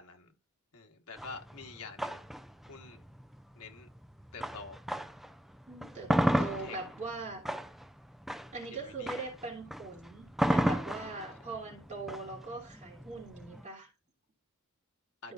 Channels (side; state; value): both; normal; correlation 0.84